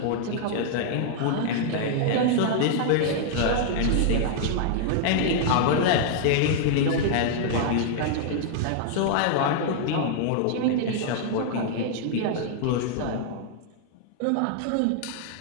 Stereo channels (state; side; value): different; both; correlation -0.01